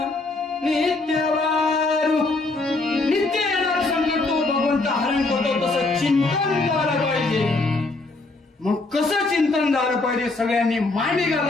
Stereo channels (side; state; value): right; quieter; 3.3 dB